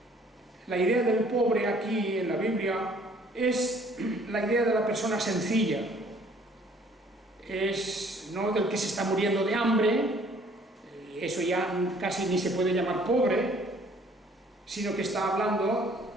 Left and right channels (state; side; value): normal; both; correlation 0.58